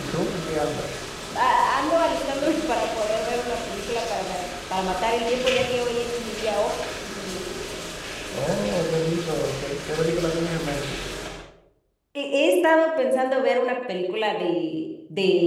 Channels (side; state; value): both; identical; correlation 1.00